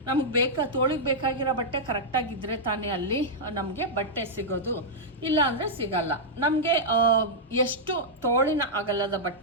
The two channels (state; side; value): normal; both; correlation -0.08